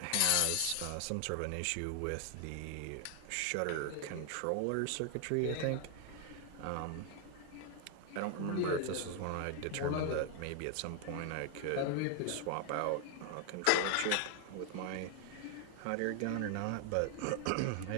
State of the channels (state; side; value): different; both; correlation 0.00